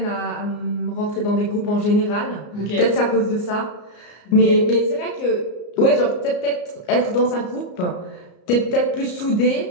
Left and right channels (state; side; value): late; right; 34 ms